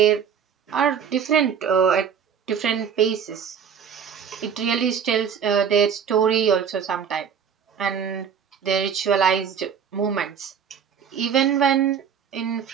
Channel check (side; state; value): left; quieter; 7.6 dB